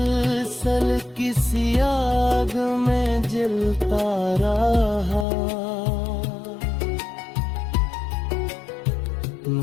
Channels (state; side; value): drops out; right; at 5.2 s